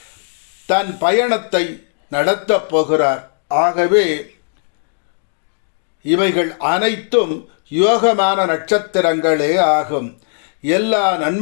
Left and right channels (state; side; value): silent; right; digital silence